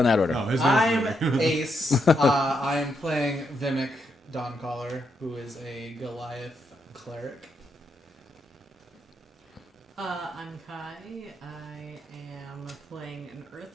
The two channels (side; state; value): both; normal; correlation 0.80